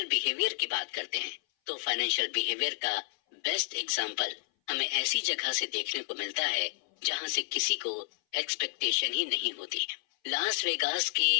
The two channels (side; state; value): right; silent; 57 dB below the other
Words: बिहेवियर की बात करते हैं तो फाइनेंशियल बिहेवियर का बेस्ट एग्जाम्पल हमें ऐसी जगह से देखने को मिलता है जहां से किसी को एक्सपेक्टेशन ही नहीं होती। लास वेगास